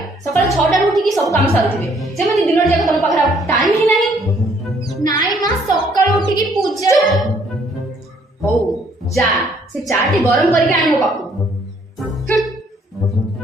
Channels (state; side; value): normal; both; correlation 0.64